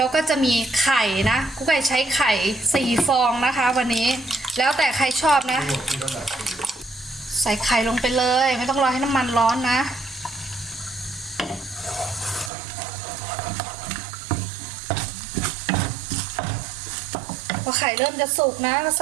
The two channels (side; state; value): left; drops out; at 12.5 s